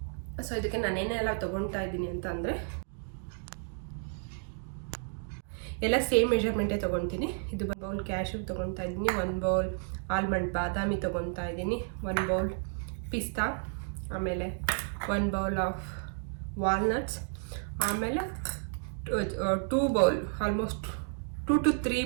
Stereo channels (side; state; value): left; silent; 56 dB below the other